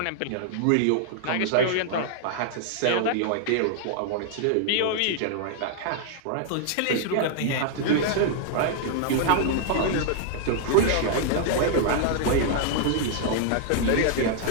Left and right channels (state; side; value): different; both; correlation 0.00